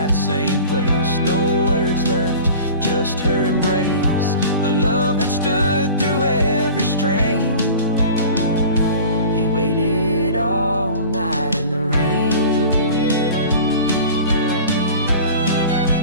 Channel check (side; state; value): both; inverted; correlation -0.40